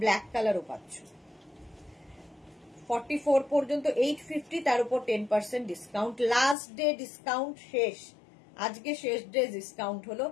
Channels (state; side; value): drops out; right; at 6.6 s